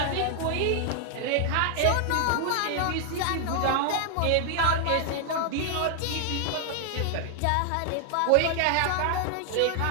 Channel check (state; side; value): different; both; correlation 0.00